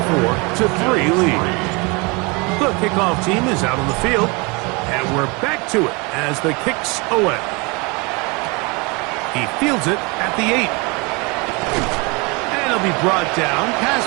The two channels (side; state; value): left; quieter; 28.4 dB